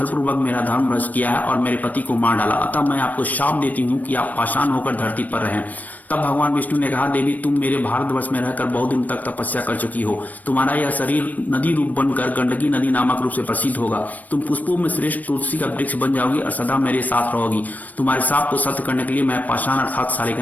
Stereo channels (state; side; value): late; right; 0.078 ms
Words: मेरा धर्म भ्रष्ट किया है और मेरे पति को मार डाला, अतः मैं आपको शाप देती हूँ कि आप पाषाण होकर धरती पर रहें। तब भगवान विष्णु ने कहा, देवी तुम मेरे भारतवर्ष में रहकर बहुत दिन तक तपस्या कर चुकी हो। तुम्हारा यह शरीर नदी रूप बनकर गंडकी नदी नामक रूप से प्रसिद्ध होगा। तुम पुष्पों में श्रेष्ठ तुलसी का वृक्ष बन जाओगी और सदा मेरे साथ रहोगी। तुम्हारे साप को सत्य करने के लिए मैं पाषाण अर्थात